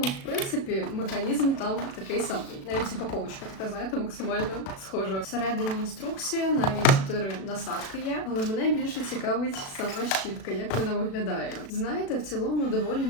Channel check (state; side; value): late; right; 36 ms